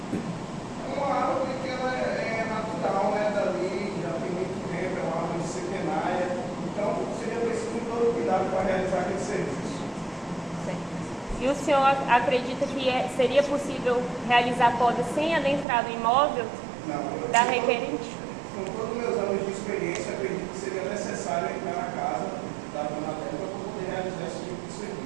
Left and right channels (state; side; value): drops out; left; at 15.7 s